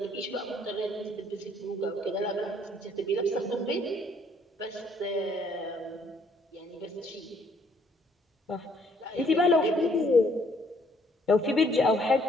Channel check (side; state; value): both; normal; correlation 0.65